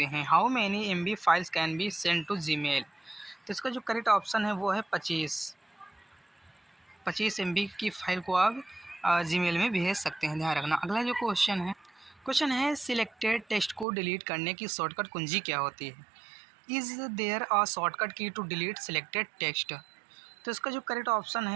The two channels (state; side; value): drops out; left; at 13.9 s